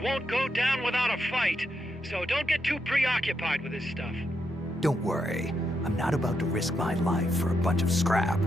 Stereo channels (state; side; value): normal; both; correlation 0.82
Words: won't go down without a fight, so don't get too preoccupied with this stuff. Don't worry. I'm not about to risk my life for a bunch of scrap.